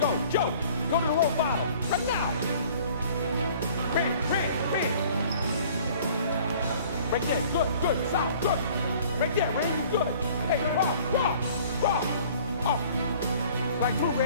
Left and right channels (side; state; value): both; inverted; correlation -0.52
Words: Joe. Go to the low bottom. Right now. Ran. Right there. Good. South. Good. Right there, Randy. Good. Hey, Rob. Up. Strike through,